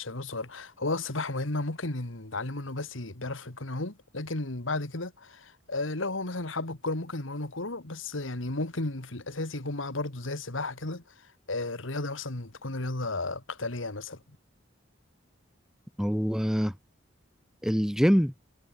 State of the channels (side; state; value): both; normal; correlation 0.51